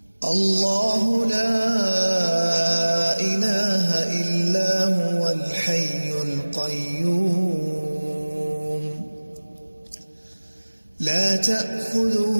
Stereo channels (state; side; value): inverted; both; correlation -1.00